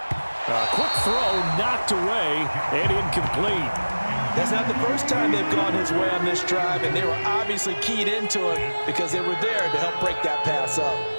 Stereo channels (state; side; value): inverted; both; correlation -1.00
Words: A quick throw knocked away and incomplete. That's not the first time they've gone his way on this drive, and they were obviously keyed into it because they were there to help break that pass up.